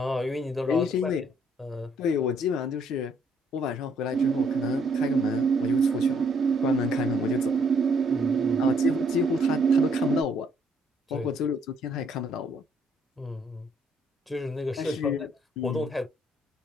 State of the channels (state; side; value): normal; both; correlation 0.67